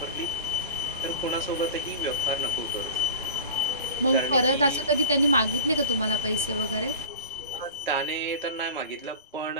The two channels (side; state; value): both; inverted; correlation -0.36